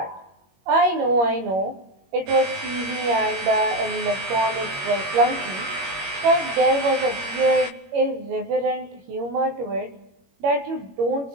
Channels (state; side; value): late; left; 21 ms